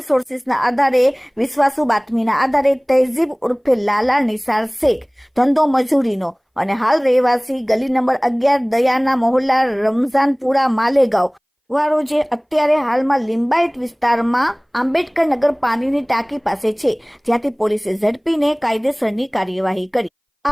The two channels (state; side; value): identical; both; correlation 1.00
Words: સોર્સિસના આધારે વિશ્વાસુ બાતમીના આધારે તહેઝીબ ઉર્ફે લાલા નિસાર શેખ ધંધો મજૂરીનો અને હાલ રહેવાસી ગલી નંબર 11 દયાના મોહલ્લા રમઝાનપુરા માલેગાંવ વાળો જે અત્યારે હાલમાં લિંબાયત વિસ્તારમાં આંબેડકર નગર પાણીની ટાંકી પાસે છે, જ્યાંથી પોલીસે ઝડપીને કાયદેસરની કાર્યવાહી કરી.